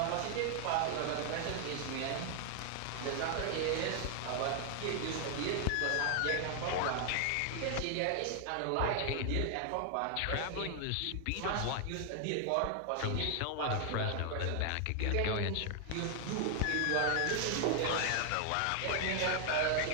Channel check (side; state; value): both; different; correlation 0.00